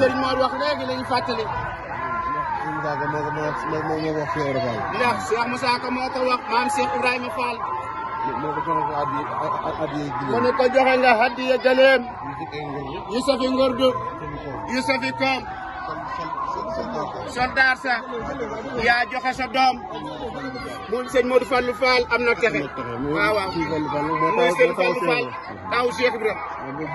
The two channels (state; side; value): identical; both; correlation 1.00